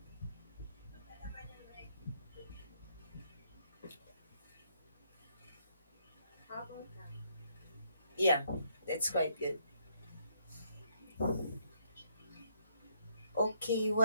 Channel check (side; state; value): both; inverted; correlation -0.72